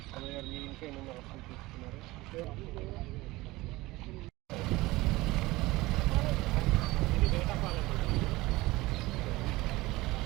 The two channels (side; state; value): left; quieter; 20.0 dB